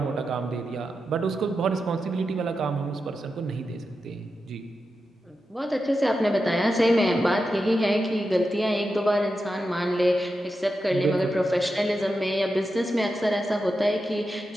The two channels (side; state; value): both; normal; correlation 0.89